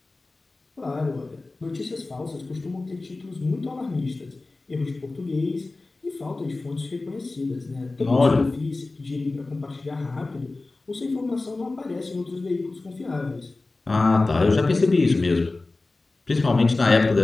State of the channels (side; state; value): right; quieter; 3.3 dB